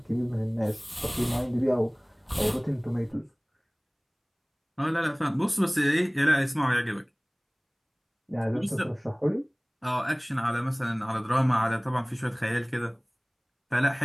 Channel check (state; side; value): identical; both; correlation 1.00